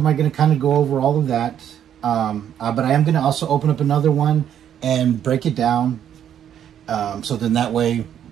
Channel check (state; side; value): quieter; left; 9.7 dB